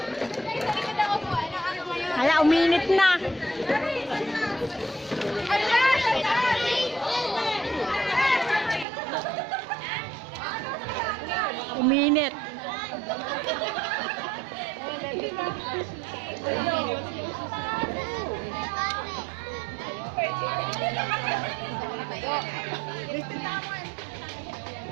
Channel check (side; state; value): left; drops out; at 8.8 s